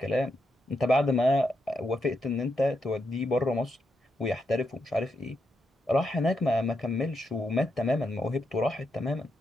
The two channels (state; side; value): normal; both; correlation 0.82